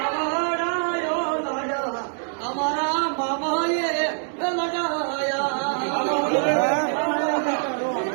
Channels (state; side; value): silent; left; 62 dB below the other